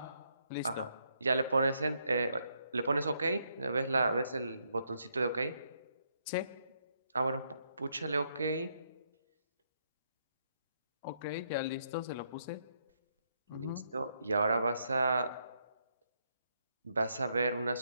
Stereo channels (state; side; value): inverted; both; correlation -0.76